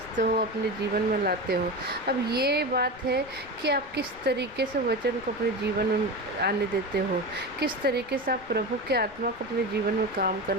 हो, अपने जीवन में लाते हो। अब ये बात है कि आप किस तरीके से वचन को अपने जीवन में आने देते हो, किस तरीके से आप प्रभु के आत्मा को अपने जीवन में काम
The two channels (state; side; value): noise; left; rumble, 21 dB below the sound